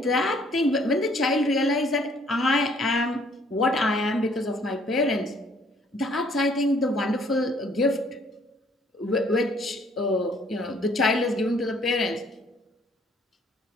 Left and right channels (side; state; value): both; normal; correlation 0.61